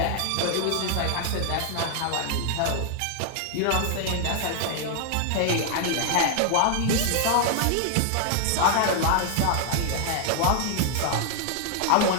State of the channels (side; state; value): both; different; correlation 0.00